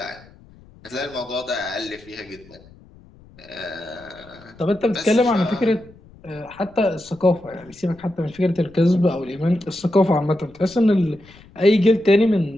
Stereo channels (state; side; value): noise; left; rumble, 24 dB below the sound